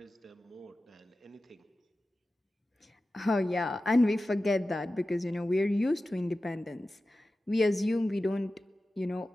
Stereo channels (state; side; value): normal; both; correlation 0.94